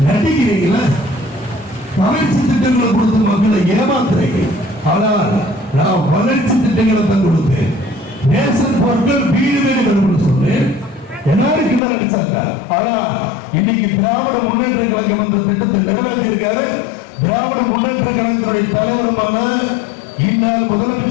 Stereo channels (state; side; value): drops out; right; at 11.8 s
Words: நடிக்கிறீங்களா? வளர்ச்சி திட்டங்களை கொடுத்து மக்களை ஏமாத்துறீங்க. ஆனால் நான் வளர்ச்சி திட்டங்களை தான் கொடுத்தேன். நேசன் பொருட்கள் வீடு வீடு வரும்னு சொன்னேன். எல்லாரும் கிட்ட நடிச்சாங்க. ஆனா இன்னைக்கு திராவிட முன்னேற்ற கழகம் அந்த திட்டத்தை நிறைவேற்றி இருக்காரு. திராவிட முன்னேற்ற கழகத்துடைய தலைவருமான இந்நாள்